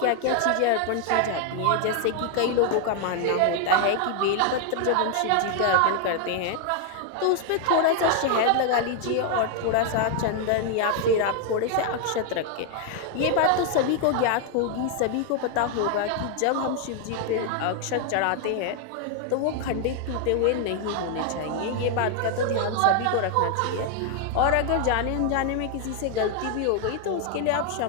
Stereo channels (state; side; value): different; both; correlation 0.00